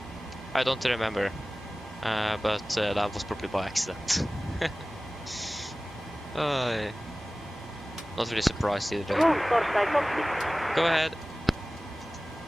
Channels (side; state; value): both; normal; correlation 0.97